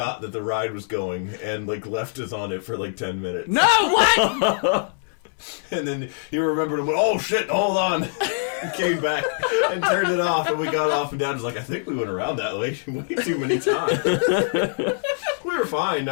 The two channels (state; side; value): silent; right; digital silence